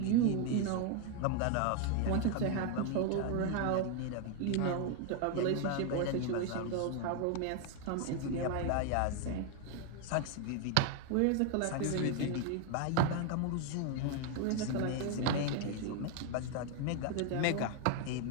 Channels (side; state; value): both; different; correlation 0.01